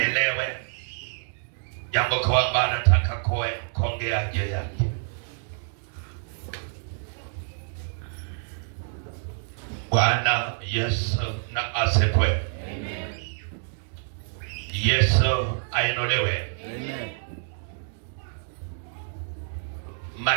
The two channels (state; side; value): silent; left; digital silence